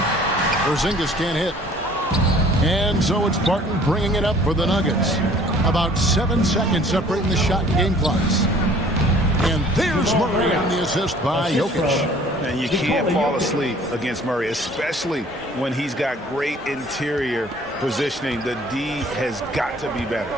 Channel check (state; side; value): normal; both; correlation 0.53